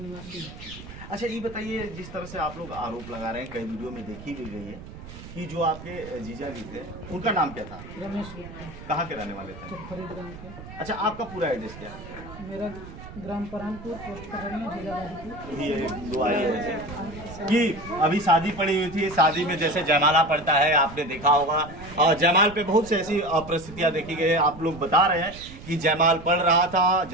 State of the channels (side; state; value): right; noise; rumble, 15 dB below the sound